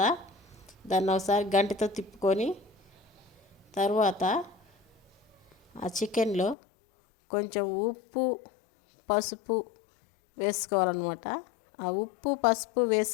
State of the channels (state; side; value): drops out; right; at 6.6 s